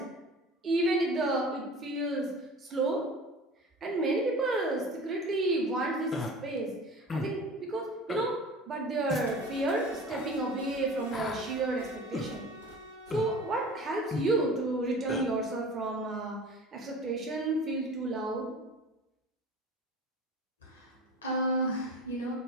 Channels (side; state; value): both; normal; correlation 0.38